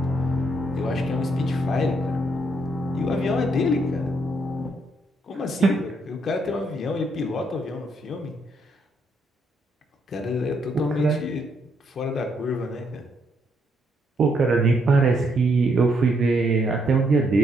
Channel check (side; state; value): both; normal; correlation 0.74